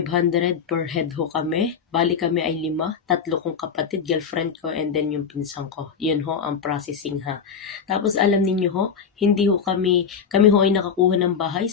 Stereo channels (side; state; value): right; quieter; 6.5 dB